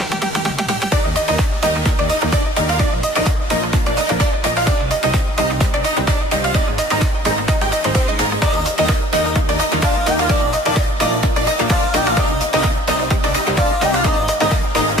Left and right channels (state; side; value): normal; both; correlation 0.58